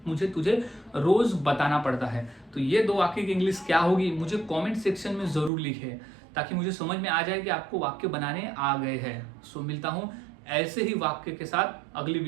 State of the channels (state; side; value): drops out; left; at 5.5 s